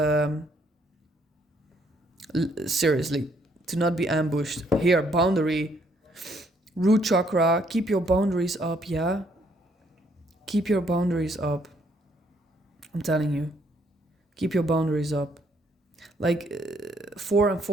seriously, to not be ambushed. Here, boundary. Root chakra, keep your boundaries up, yeah? Keep your boundaries up. I'm telling you. Keep your boundaries up. Like, 4 and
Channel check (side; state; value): both; normal; correlation 0.69